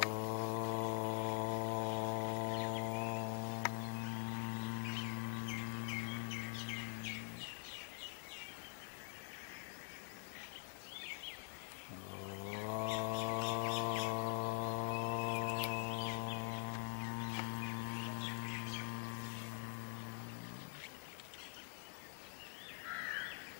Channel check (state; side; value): silent; right; digital silence